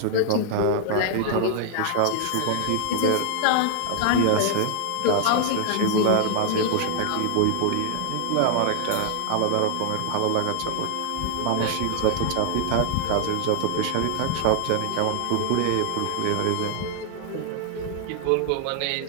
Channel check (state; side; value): different; both; correlation 0.00